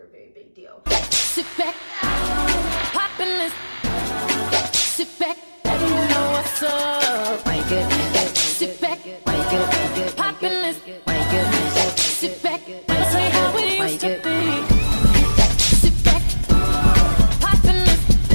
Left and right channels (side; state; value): both; inverted; correlation -1.00